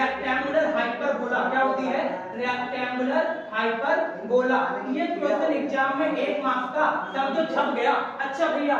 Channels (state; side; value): identical; both; correlation 1.00